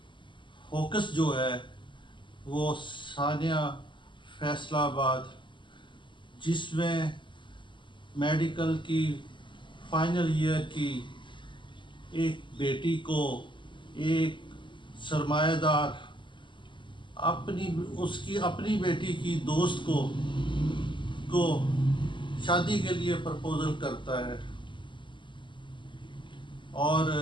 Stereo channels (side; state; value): right; late; 0.24 ms